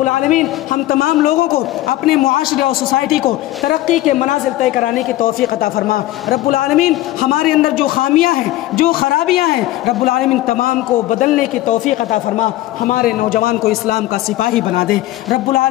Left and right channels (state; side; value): quieter; right; 15.8 dB